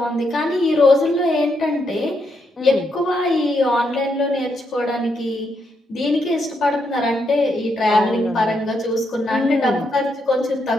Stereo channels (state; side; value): normal; both; correlation 0.79